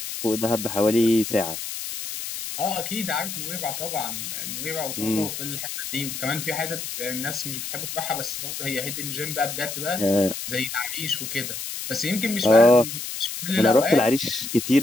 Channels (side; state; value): left; noise; hiss, 6 dB below the sound